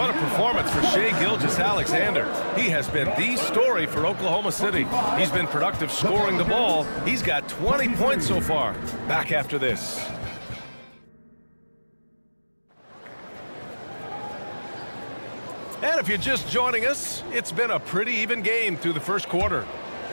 a performance for Shai Gilgeous-Alexander. He has been the story for Oklahoma City. He's been productive scoring the ball. He's got 20 points so far. Back after this. And if you're just joining us, it's been a pretty even game through the first quarter.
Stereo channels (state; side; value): inverted; both; correlation -1.00